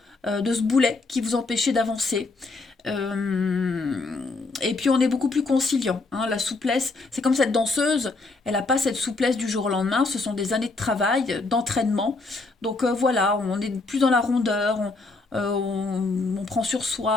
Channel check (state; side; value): quieter; right; 3.5 dB